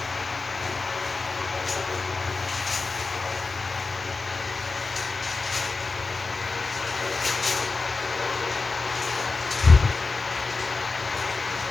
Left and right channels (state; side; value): quieter; right; 4.0 dB